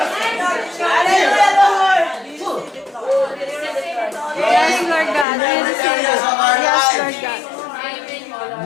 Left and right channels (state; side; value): drops out; right; at 5.2 s